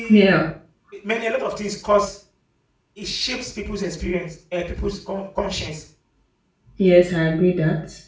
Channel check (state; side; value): identical; both; correlation 1.00